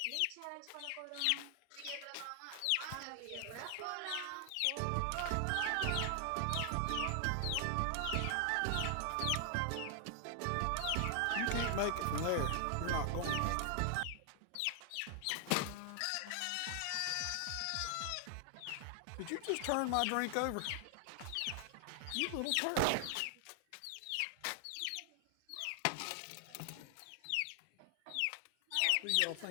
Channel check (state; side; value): different; both; correlation 0.00